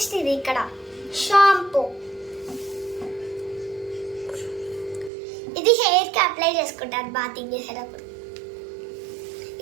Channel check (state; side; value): drops out; left; at 5.1 s